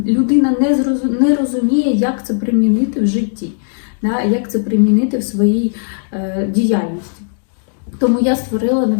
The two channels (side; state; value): right; silent; digital silence